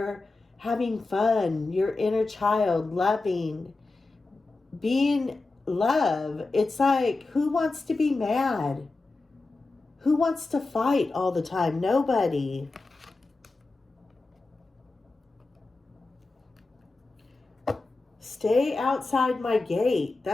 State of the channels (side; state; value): right; quieter; 3.5 dB